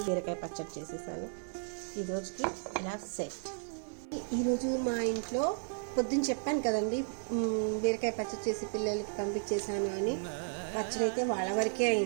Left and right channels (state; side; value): silent; left; 55 dB below the other